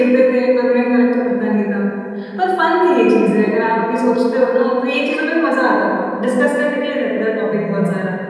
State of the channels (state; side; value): identical; both; correlation 1.00